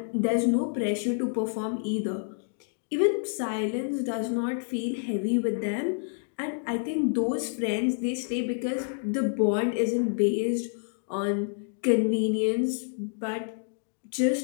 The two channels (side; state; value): right; silent; digital silence